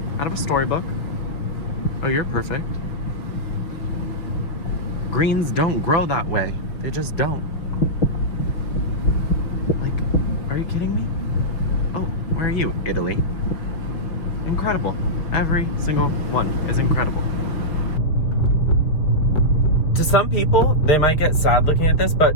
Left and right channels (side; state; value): right; late; 6.1 ms